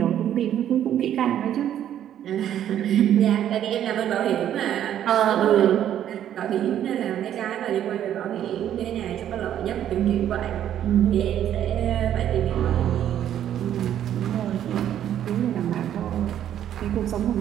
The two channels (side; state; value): left; quieter; 10.7 dB